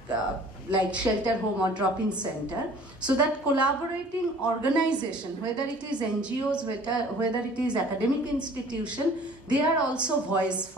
like shelter home or drop-in center. So that collaborating organization, whether it is NGOs, whether it is academic institution, they are also voice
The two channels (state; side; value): normal; both; correlation 0.50